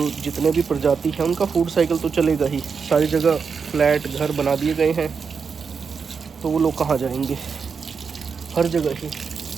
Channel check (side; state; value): left; quieter; 5.7 dB